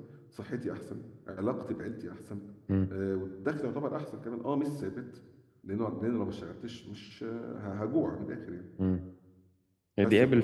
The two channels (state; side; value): identical; both; correlation 1.00